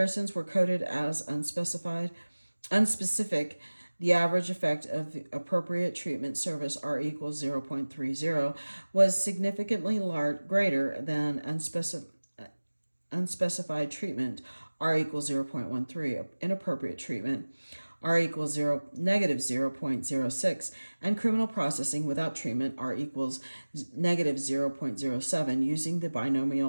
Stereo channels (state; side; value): inverted; both; correlation -1.00